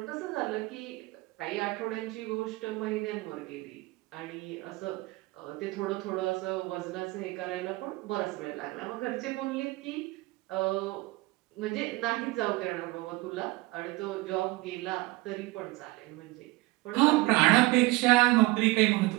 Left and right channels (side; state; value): left; quieter; 21.5 dB